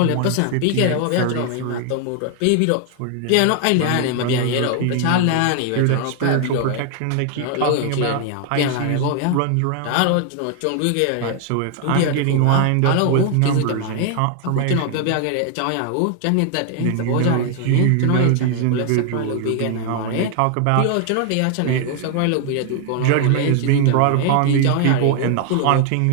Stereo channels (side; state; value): both; different; correlation 0.00